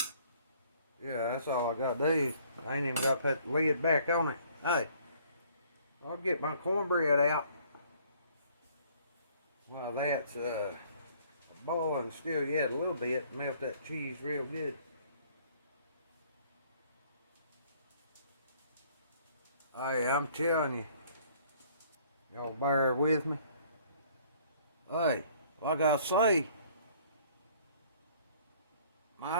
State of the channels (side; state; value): both; inverted; correlation -0.58